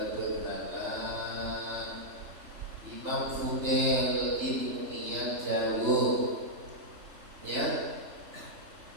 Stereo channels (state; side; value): late; left; 3.4 ms